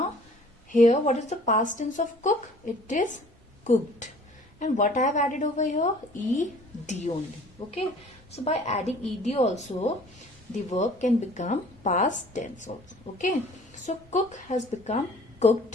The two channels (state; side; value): normal; both; correlation 0.51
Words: here what is the past tense of cook? It is cooked. And what I have added over here? ed only. Okay, so by adding ed also, the verb can become past tense also. Okay, so cook has become